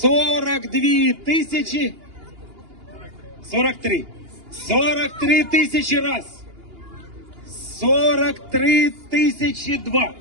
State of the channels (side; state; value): left; late; 2.8 ms